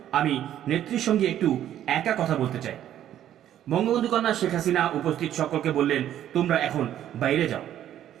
আমি নেত্রীর সঙ্গে একটু একা কথা বলতে চাই। বঙ্গবন্ধু কন্যা শেখ হাসিনা উপস্থিত সকলকে বললেন, তোমরা এখন বাইরে যাও।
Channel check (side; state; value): left; quieter; 11.3 dB